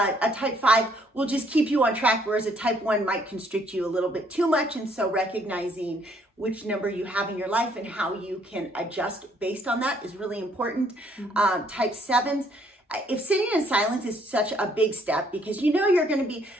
type 5 will just keep you on track, whereas a type 1 might constrict you a little bit too much. And so recognizing which number you have in your life and how you can adjust based on that is really important. Type 7s, if sitting in silence is such a big step, because you know you're going to be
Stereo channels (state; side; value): normal; both; correlation 0.66